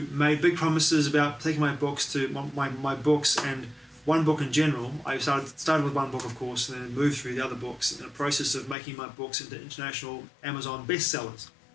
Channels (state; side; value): drops out; right; at 8.8 s